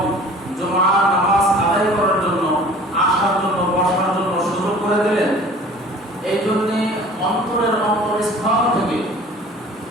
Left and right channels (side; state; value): both; normal; correlation 0.47